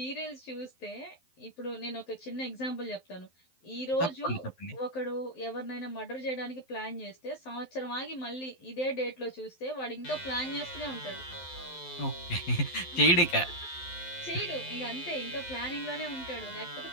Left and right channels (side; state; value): right; late; 12 ms